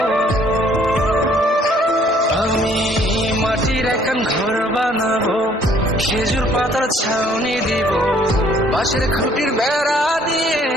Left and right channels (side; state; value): both; normal; correlation 0.61